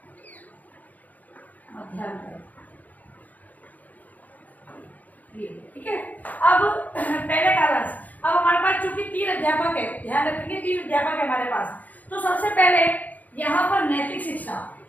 मध्यांतर। ये ठीक है। अब पहले कालांश, अब हमारे पास चूंकि 3 अध्यापक है, ध्यान रखेंगे 3 अध्यापक है हमारे पास। तो सबसे पहले यहाँ पर नैतिक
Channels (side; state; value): right; late; 0.079 ms